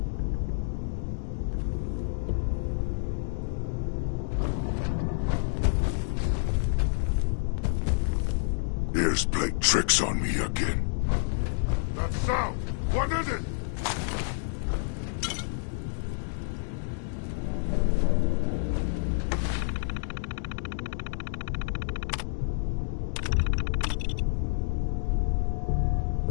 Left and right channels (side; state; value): right; silent; digital silence